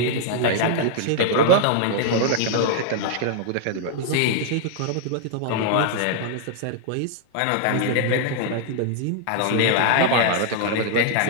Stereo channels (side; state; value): both; different; correlation 0.00